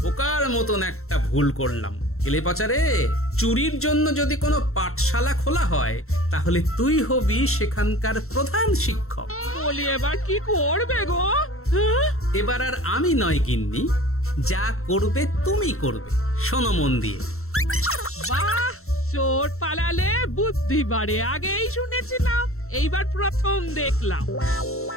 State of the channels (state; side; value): late; right; 0.63 ms